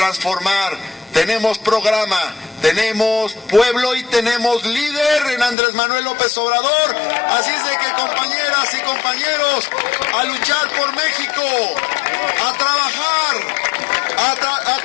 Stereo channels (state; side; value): drops out; right; at 5.6 s